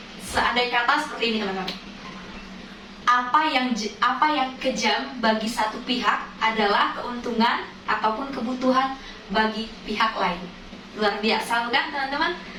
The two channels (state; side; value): identical; both; correlation 1.00